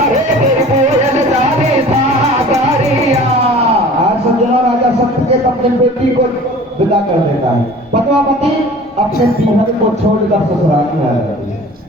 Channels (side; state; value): both; normal; correlation 0.44